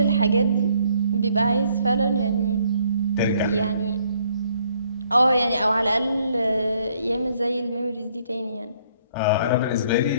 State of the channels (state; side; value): inverted; both; correlation -0.66